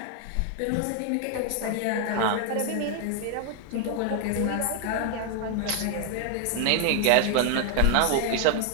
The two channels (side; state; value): both; different; correlation 0.00